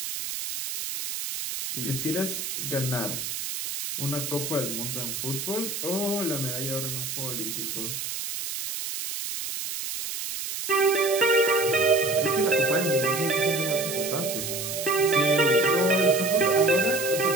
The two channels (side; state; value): right; noise; hiss, 5 dB below the sound